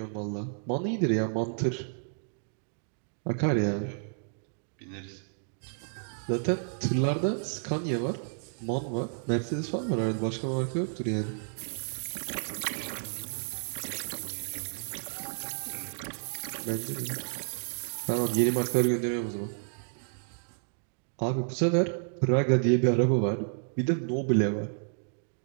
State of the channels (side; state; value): left; silent; digital silence